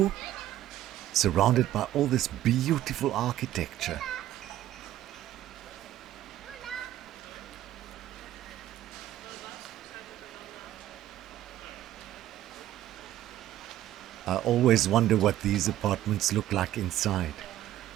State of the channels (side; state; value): left; quieter; 13.3 dB